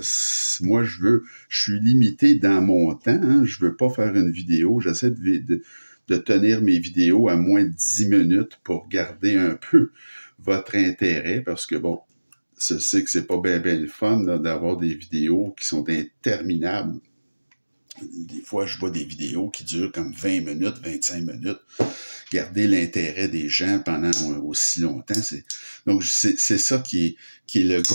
moi je suis limité dans mon temps, hein, je veux pas faire une vidéo, j'essaie de tenir mes vidéos à moins de 10 minutes pour garder un peu votre intérêt, parce que bon, je sais que c'est pas bien le fun d'avoir des vidéos qui sont interminables. Des fois, je vois des vidéos qui durent comme 20 minutes, 25 minutes. Garder l'intérêt des gens pendant aussi longtemps, donc c'est ça qui est le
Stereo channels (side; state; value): both; inverted; correlation -1.00